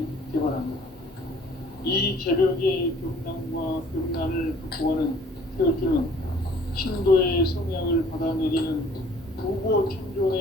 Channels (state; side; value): normal; both; correlation 0.55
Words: 개발합니다. 이 개벽의 병난과 병난을 극복하는 태울주는 신도의 성향을 받아내리는 부고